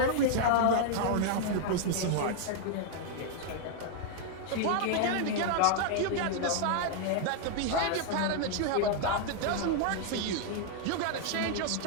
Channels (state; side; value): different; both; correlation 0.00